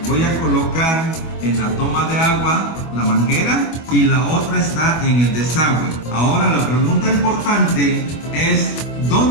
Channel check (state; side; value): late; right; 25 ms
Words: Voy a colocar en la toma de agua la manguera y la otra está en el desagüe. Ahora la pregunta importante es: